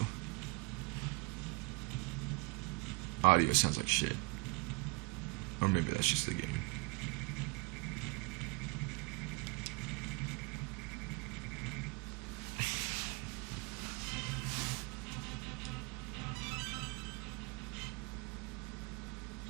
Audio sounds like shit. Or maybe that's just the game.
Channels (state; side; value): quieter; left; 28.1 dB